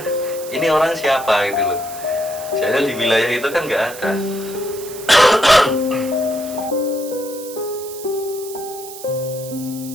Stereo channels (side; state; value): right; noise; hiss, 14 dB below the sound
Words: ini orang siapa gitu loh. Soalnya di wilayah itu kan nggak ada.